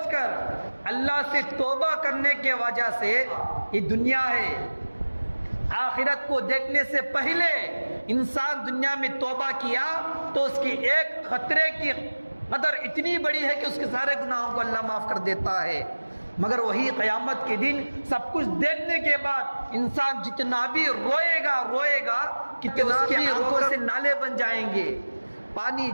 کر اللہ سے توبہ کرنے کے وجہ سے، یہ دنیا ہے، آخرت کو دیکھنے سے پہلے انسان دنیا میں توبہ کیا تو اس کی ایک خطرے کی قدر اتنی بڑی ہے کہ اس کے سارے گناہوں کو اللہ معاف کر دیتا ہے، مگر وہی قیامت کے دن سب کچھ دیکھنے کے بعد انسان جتنا بھی روئے گا کہ اس کی آنکھوں سے نالے بن جائیں گے، پانی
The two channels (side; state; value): both; inverted; correlation -1.00